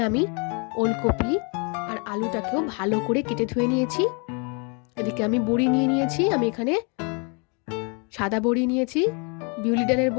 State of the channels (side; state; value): right; quieter; 34.6 dB